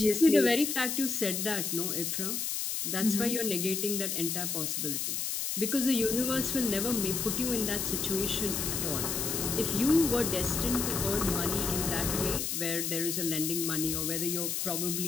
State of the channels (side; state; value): left; noise; hiss, 1 dB below the sound